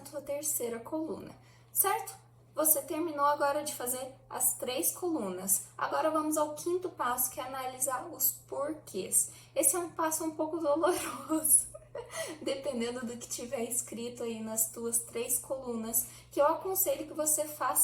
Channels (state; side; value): identical; both; correlation 1.00